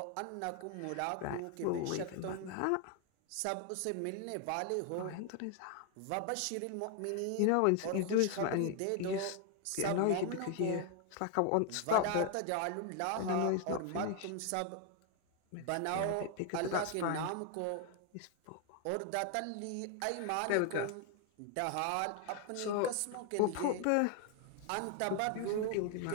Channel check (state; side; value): different; both; correlation 0.00